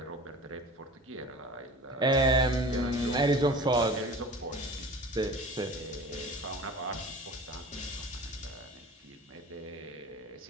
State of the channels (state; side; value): normal; both; correlation 0.39